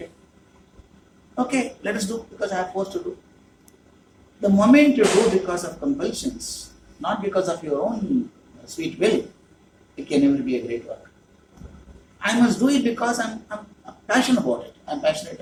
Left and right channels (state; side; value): identical; both; correlation 1.00